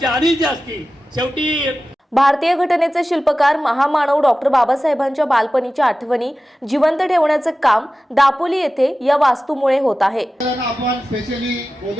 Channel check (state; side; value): normal; both; correlation 0.95